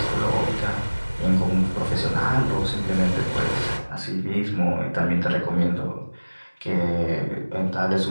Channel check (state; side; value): inverted; both; correlation -1.00